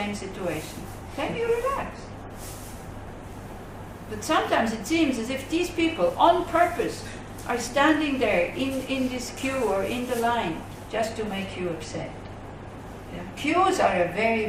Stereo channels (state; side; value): identical; both; correlation 1.00